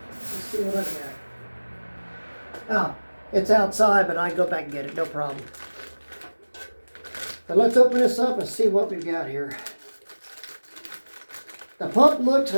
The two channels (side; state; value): both; inverted; correlation -1.00